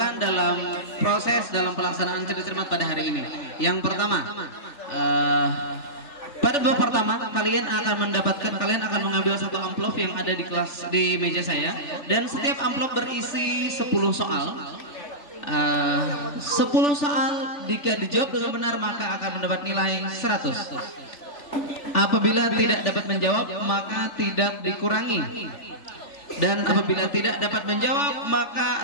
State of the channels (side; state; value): right; late; 3.5 ms